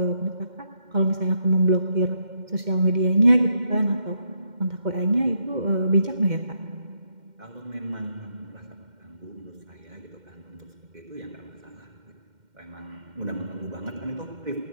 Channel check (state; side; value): late; left; 2.1 ms